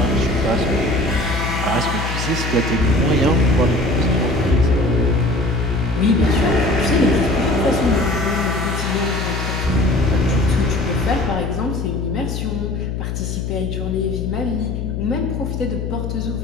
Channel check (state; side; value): noise; left; hum, 3 dB below the sound